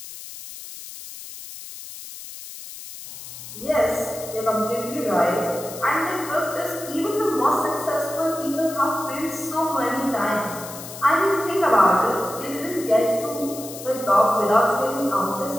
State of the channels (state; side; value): noise; left; hiss, 13 dB below the sound